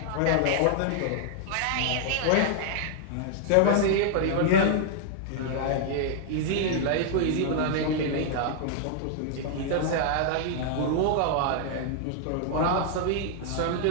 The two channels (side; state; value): both; different; correlation -0.01